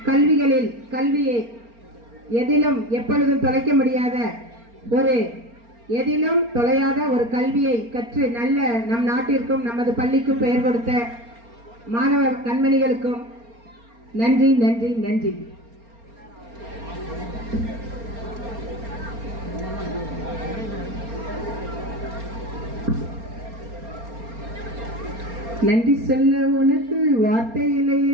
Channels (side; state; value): left; late; 4.3 ms